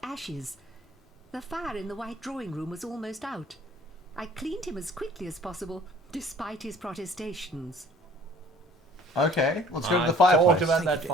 ashes. The fire in the white drawing room was almost out. I cleaned him as quickly as possible, despite his protestations. Okay, let's go to the I've fireplace. talked about that Thank you,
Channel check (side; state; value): both; normal; correlation 0.52